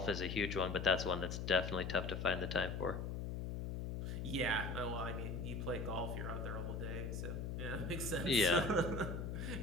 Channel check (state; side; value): noise; left; hum, 3 dB below the sound